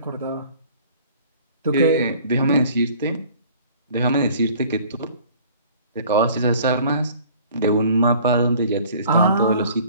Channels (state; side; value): inverted; both; correlation -0.51